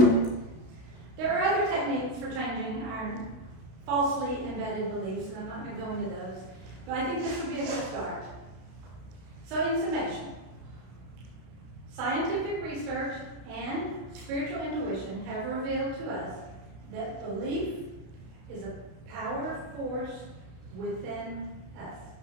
There are other techniques for changing our falsely embedded beliefs, and I'm not going to go into those. But I think this would be a good start. So in summation, scientific research and spiritual intuition have revealed to us that belief is a power force within us.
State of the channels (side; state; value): left; late; 32 ms